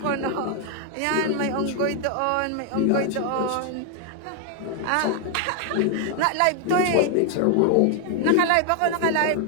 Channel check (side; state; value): both; different; correlation 0.00